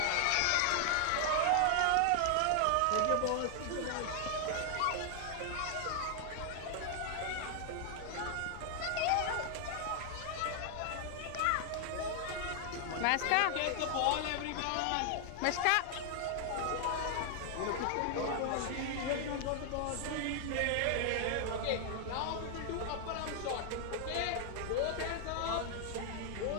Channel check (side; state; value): both; different; correlation 0.00